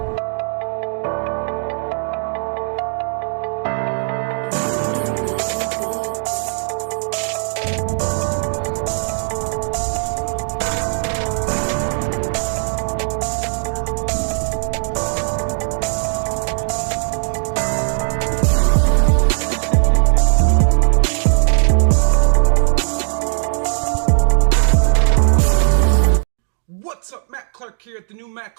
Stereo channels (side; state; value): left; silent; digital silence